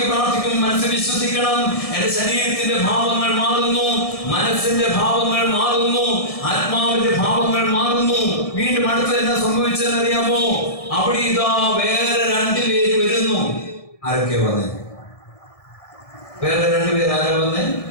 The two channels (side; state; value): right; late; 1.7 ms